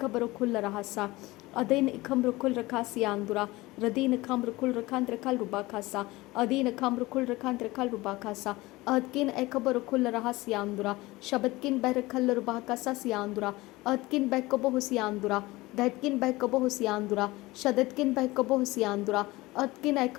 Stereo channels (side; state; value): right; quieter; 20.4 dB